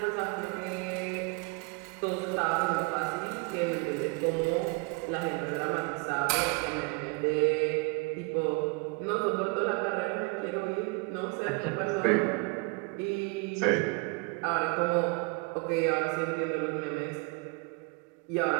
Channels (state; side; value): quieter; left; 29.7 dB